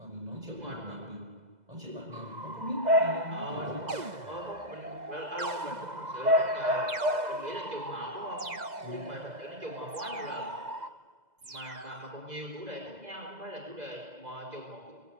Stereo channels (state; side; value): late; left; 2.0 ms